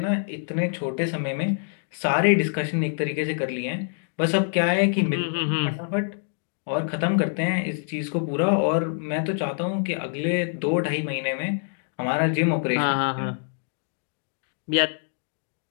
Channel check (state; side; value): silent; right; digital silence